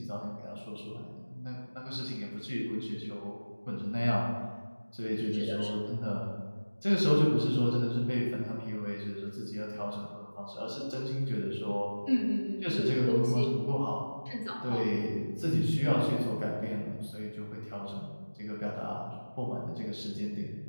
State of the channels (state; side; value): inverted; both; correlation -1.00